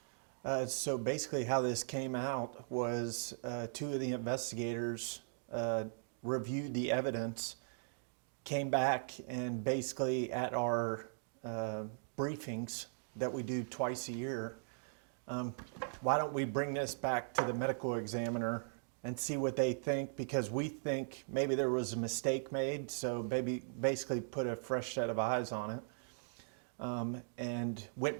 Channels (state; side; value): silent; left; digital silence